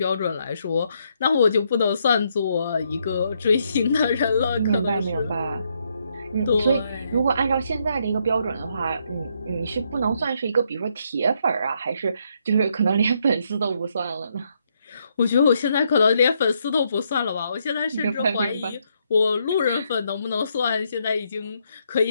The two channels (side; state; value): both; inverted; correlation -0.75